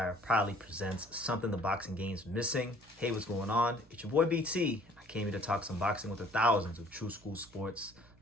proudly presents something the boxing game's missing. Hey, what's going on? It's your boy BT. I came here to talk some boxing with the thousands of True School Sports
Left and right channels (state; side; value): normal; both; correlation 0.55